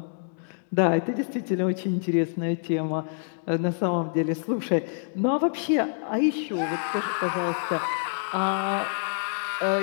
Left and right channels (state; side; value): silent; right; digital silence